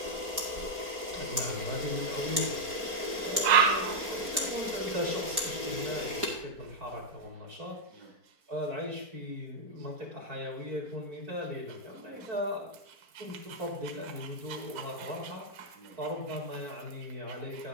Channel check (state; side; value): late; left; 4.2 ms